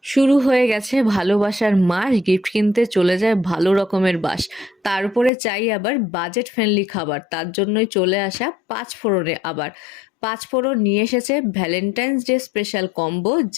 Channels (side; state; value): right; drops out; at 5.3 s